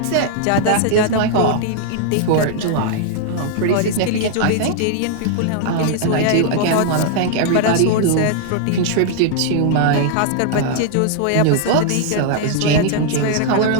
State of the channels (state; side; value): different; both; correlation 0.00